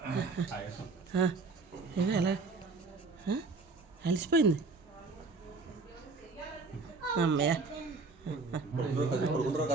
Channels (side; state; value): left; quieter; 4.0 dB